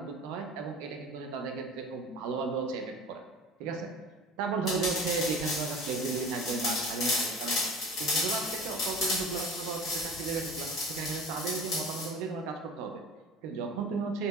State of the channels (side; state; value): both; normal; correlation 0.40